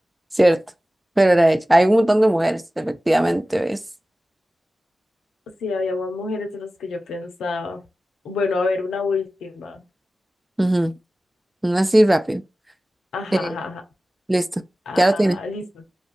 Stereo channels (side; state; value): both; normal; correlation 0.96